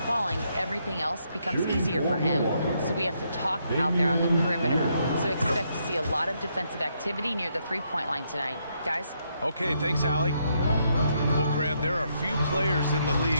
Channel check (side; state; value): both; inverted; correlation -0.76